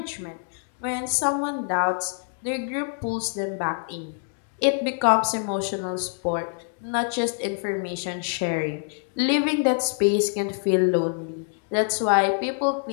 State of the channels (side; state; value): right; silent; 60 dB below the other